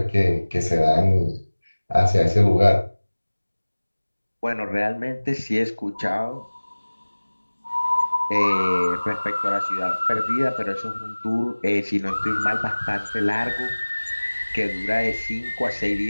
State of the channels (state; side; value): inverted; both; correlation -1.00